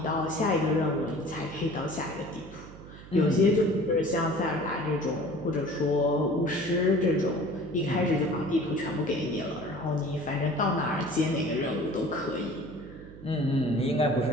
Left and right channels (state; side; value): noise; right; hum, 17 dB below the sound